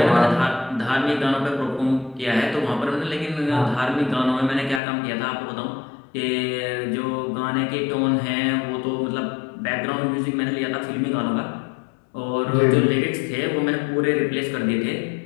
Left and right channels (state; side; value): drops out; right; at 4.8 s